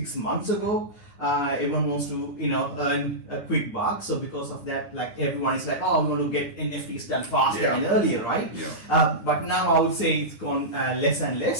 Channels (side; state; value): right; late; 9.8 ms